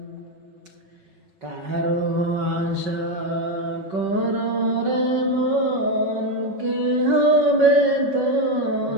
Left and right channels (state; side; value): late; left; 5.3 ms